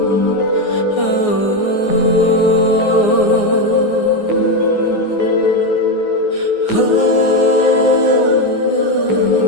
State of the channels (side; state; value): right; late; 9.6 ms